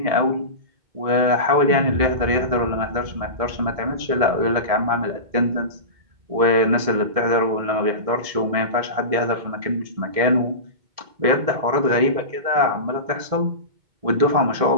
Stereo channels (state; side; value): late; left; 1.7 ms